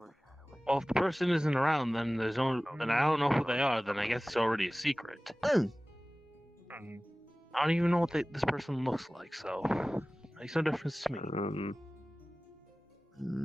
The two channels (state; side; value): normal; both; correlation 0.98